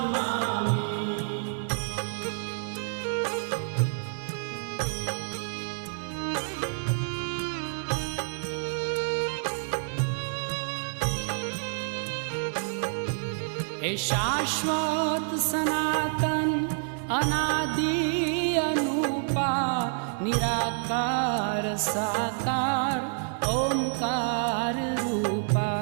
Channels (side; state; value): left; silent; 57 dB below the other